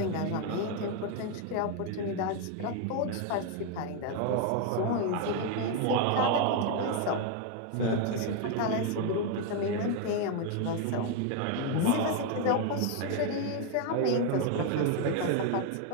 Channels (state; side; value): different; both; correlation 0.01